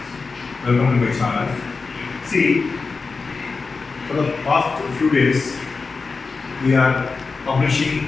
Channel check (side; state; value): right; quieter; 4.4 dB